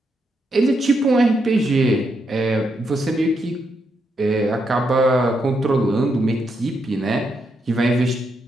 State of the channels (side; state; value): both; normal; correlation 0.80